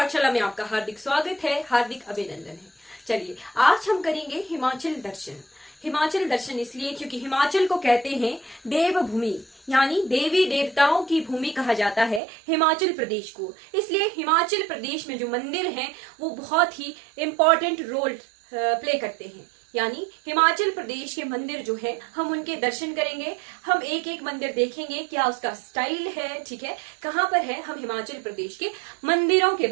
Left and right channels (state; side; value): drops out; left; at 12.2 s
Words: में आपका हार्दिक स्वागत है, हार्दिक अभिनंदन है। चलिए आज हम करेंगे हिमाचल दर्शन। हिमाचल दर्शन इसलिए क्योंकि हिमाचल को कहते हैं देवभूमि, यानी देवी देवताओं की भूमि कहा जाता है हिमाचल प्रदेश को। इसलिए हिमाचल प्रदेश में जो मंदिर हैं वो बहुत ही इम्पोर्टेंट रोल प्ले करते हैं। यानी हिमाचल प्रदेश के मंदिर जो है हम उनके दर्शन करेंगे, हम एक एक मंदिर देखेंगे क्या उसका स्टाइल है, ठीक है, कहाँ पर है, हम हिमाचल प्रदेश के मंदिरों के